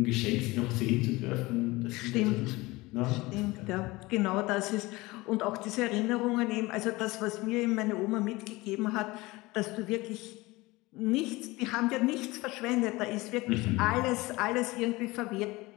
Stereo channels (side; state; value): right; quieter; 21.4 dB